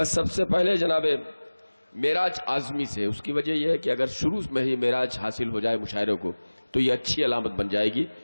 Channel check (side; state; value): both; inverted; correlation -1.00